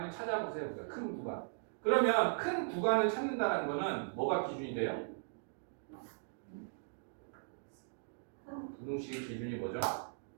찾아보세요. 큰 구간. 그러면 큰 구간을 찾는다는 거는 뭐가 기준이 돼요? 부등식의 기준이 뭐죠?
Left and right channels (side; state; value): left; silent; digital silence